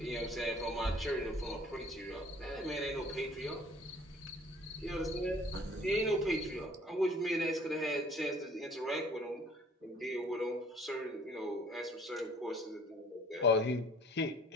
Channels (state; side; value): normal; both; correlation 0.55